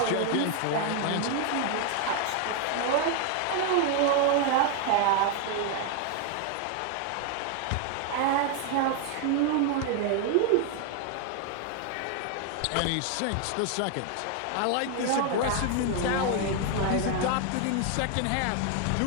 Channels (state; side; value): different; both; correlation 0.00